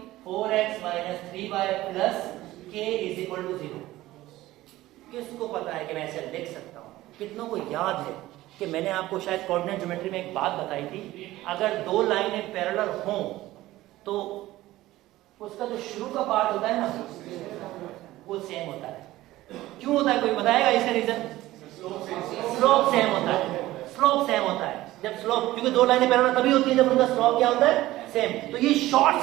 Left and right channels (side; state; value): left; quieter; 16.6 dB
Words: 4x - 3y + k = 0। किसको पता है कि मैं ऐसे लिख सकता हूं? कितनों को याद है कि मैंने आपको शायद कोऑर्डिनेट ज्योमेट्री में एक बात बताई थी, अगर दो लाइनें पैरेलल हों तो उसका जो शुरू का पार्ट होता है ना वो सेम होता है। क्यों होता है? कोई बताएगा इसका रीजन? स्लोप सेम होता है। स्लोप सेम होता है जब स्लोप, क्योंकि दो लाइनें पैरेलल तभी होती है जब उनका स्लोप क्या होता है? सेम। तो ये